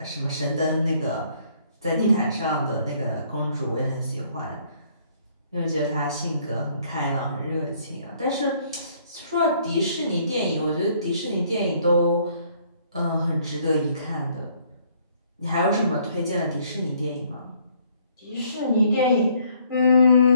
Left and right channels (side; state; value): both; inverted; correlation -0.64